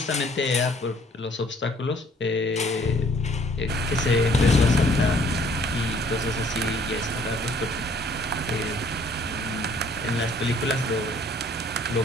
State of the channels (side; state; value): both; normal; correlation 0.59